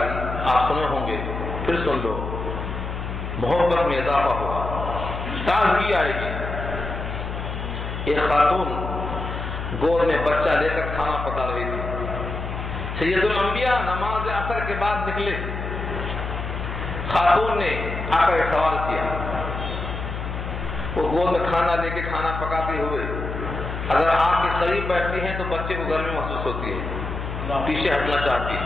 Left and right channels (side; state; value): left; noise; hum, 5 dB below the sound